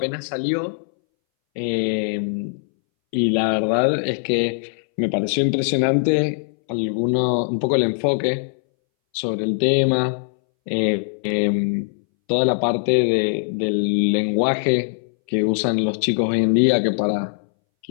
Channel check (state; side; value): silent; right; 63 dB below the other